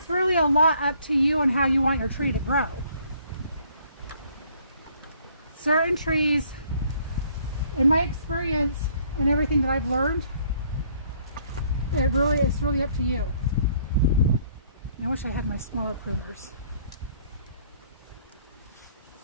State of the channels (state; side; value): inverted; both; correlation -0.62